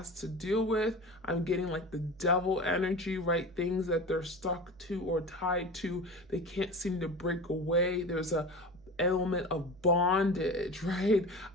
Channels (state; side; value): noise; right; hum, 27 dB below the sound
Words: to deal with. I'm getting like the devil energy, right? Things that they're stuck to or tied to. They can't seem to break away. There's a element of bondage, right?